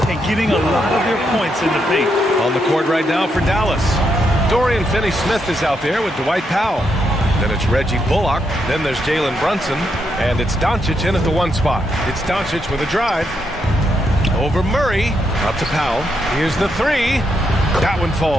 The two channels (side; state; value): both; normal; correlation 0.80